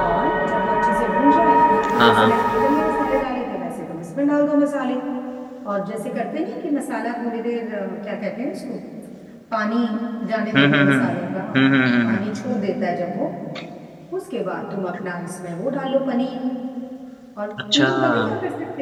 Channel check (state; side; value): identical; both; correlation 1.00